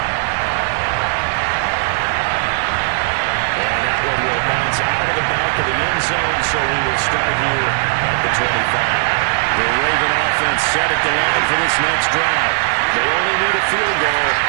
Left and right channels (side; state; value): left; silent; digital silence